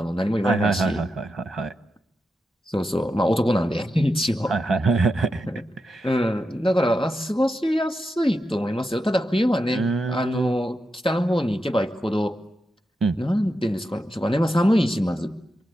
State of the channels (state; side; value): normal; both; correlation 0.87